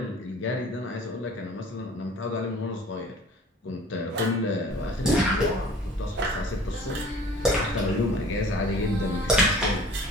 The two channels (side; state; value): both; normal; correlation 0.48